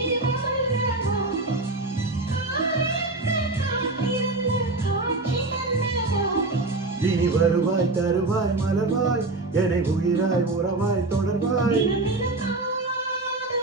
இனி வருவாய் தருவாய் மலர்வாய் என்னை உயிராய் உறவாய் தொடர்வாய்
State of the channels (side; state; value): left; quieter; 3.1 dB